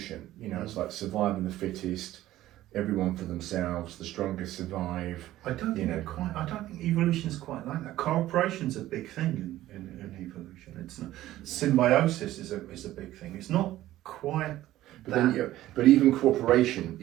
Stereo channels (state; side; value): quieter; left; 14.7 dB